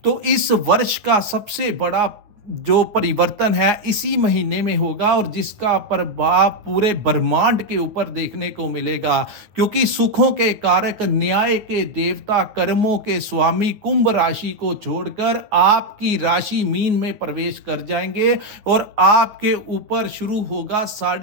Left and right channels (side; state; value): left; late; 9.6 ms